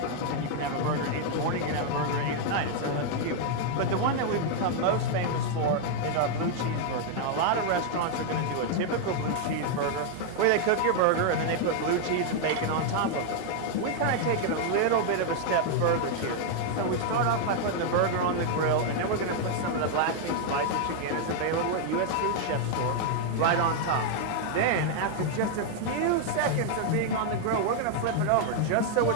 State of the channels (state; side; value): different; both; correlation 0.00